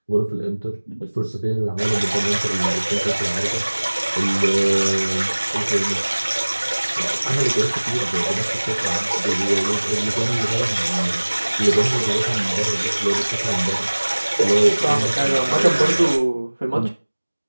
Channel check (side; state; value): both; inverted; correlation -1.00